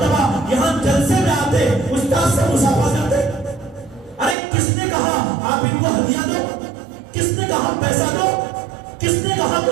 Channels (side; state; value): left; drops out; at 4.4 s